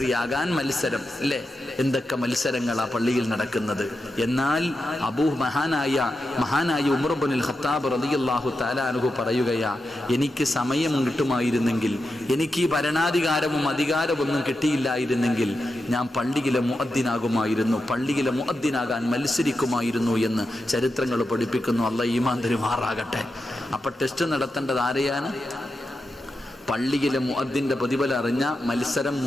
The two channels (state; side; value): normal; both; correlation 0.89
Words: ആകാൻ മത്സരം, അല്ലേ? എന്തൊക്കെ മത്സരങ്ങളാ പള്ളിയിൽ നടക്കുന്നത്. എന്നാൽ മഹാനായ ഉമർ ഇബ്നുൽ ഖത്താബ് റളിയല്ലാഹു തആല അൻഹു പറയുകയാ, എനിക്ക് സമയം കിട്ടുമായിരുന്നെങ്കിൽ, എനിക്ക് ഈ ഭരണാധികാരവും അധികാരമൊന്നും കിട്ടിയില്ലായിരുന്നെങ്കിൽ ഞാൻ പള്ളിയിലെ മുഅദ്ദിനാകുമായിരുന്നു, പള്ളിയിലെ മുഅദ്ദിനാകാൻ മത്സരിക്കുമായിരുന്നു എന്ന് ചരിത്രങ്ങൾ പഠിപ്പിക്കുന്നു. അല്ലാഹു ഈമാൻ തരുമാറാകട്ടെ. അപ്പൊ ടെസ്റ്റ് നടത്തേണ്ടത് ആരെയാണ്? പള്ളിയിലെ മുഅദ്ദിന്റെ പ്രതിഫലം അറിഞ്ഞ മത്സരം